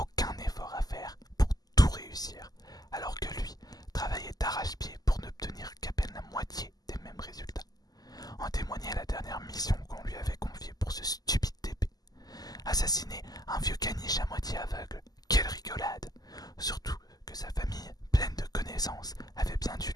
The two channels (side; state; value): right; late; 0.18 ms